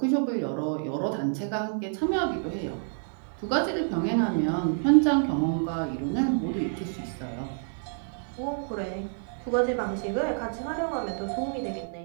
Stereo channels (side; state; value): left; silent; digital silence